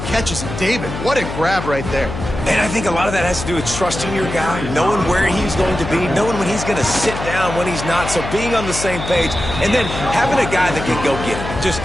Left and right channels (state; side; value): noise; left; hum, 7 dB below the sound